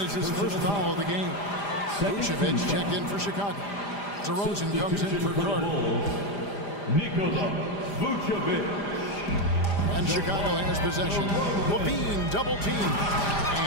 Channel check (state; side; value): late; right; 5.0 ms